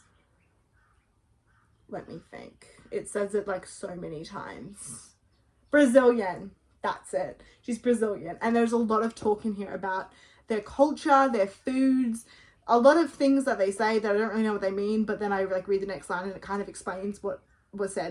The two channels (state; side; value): identical; both; correlation 1.00